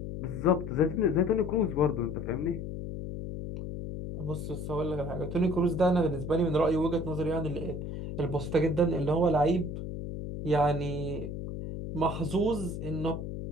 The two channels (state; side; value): noise; left; hum, 6 dB below the sound